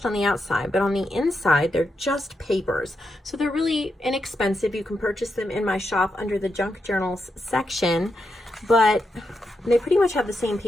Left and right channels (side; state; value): both; normal; correlation 0.85